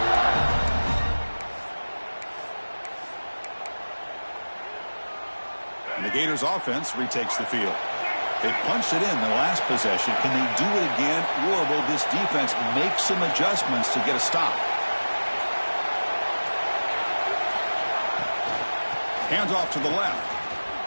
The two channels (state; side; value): inverted; both; correlation -1.00